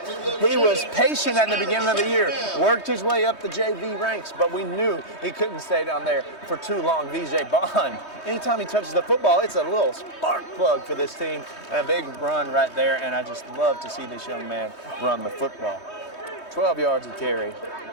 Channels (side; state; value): right; late; 3.2 ms